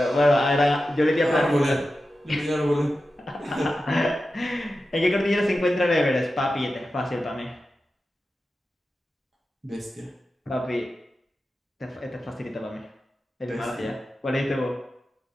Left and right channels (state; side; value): normal; both; correlation 0.92